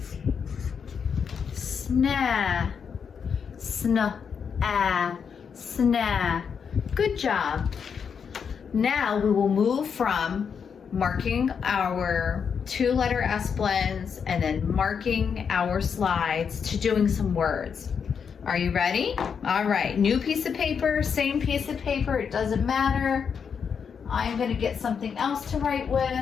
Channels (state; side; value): quieter; right; 6.7 dB